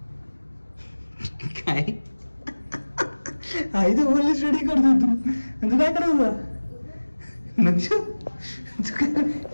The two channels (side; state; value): both; inverted; correlation -1.00